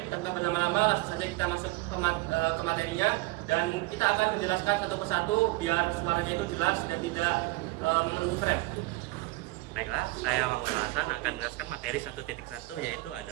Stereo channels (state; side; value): quieter; left; 21.4 dB